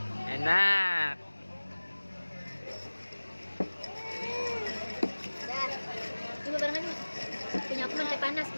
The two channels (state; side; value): inverted; both; correlation -1.00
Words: Coba barengan nih. Punya aku teh panas